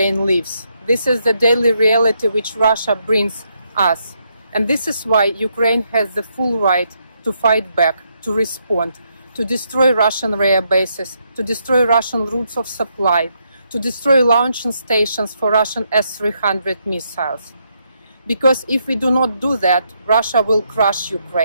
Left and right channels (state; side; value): inverted; both; correlation -0.78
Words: lives. This is the daily reality which Russia brings us. And this is why Ukraine has the full right to fight back, to respond, to destroy Russian rare bases, to destroy Russian routes of supply, to destroy launching stations for Russian S-300 missiles. Because if we do not do that, Russia will crush